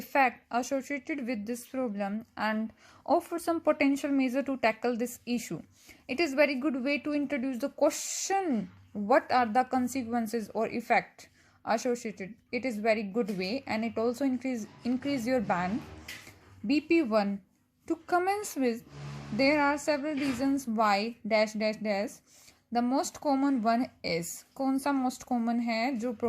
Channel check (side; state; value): both; identical; correlation 1.00